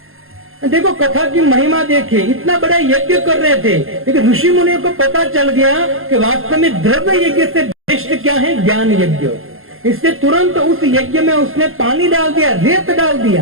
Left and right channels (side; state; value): left; late; 0.61 ms